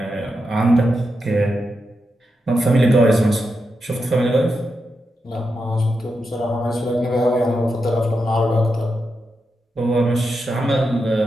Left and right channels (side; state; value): both; normal; correlation 0.87